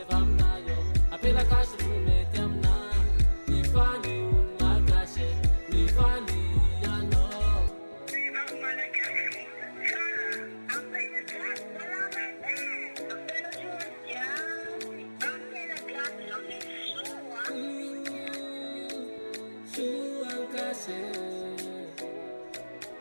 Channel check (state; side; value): inverted; both; correlation -1.00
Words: vamnayo apela kash rume tamna bifali un makashe bifali ano